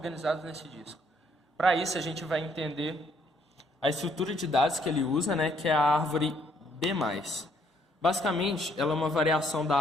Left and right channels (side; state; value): both; normal; correlation 0.68